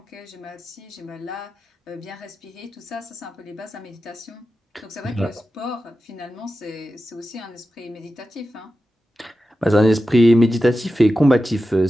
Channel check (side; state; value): both; normal; correlation 0.92